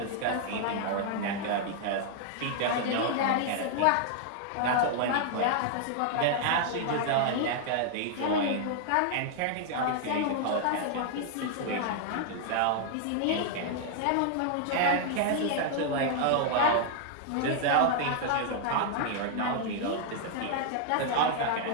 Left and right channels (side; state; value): both; different; correlation 0.00